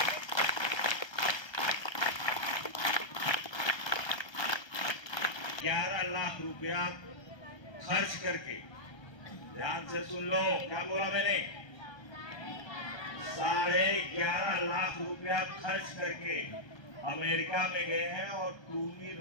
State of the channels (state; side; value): late; right; 1.3 ms